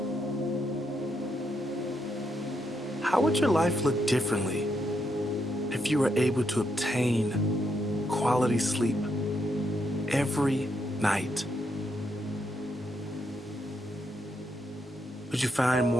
How would your life look differently if you were able to obtain quality sleep every night? Would you find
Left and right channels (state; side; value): normal; both; correlation 0.79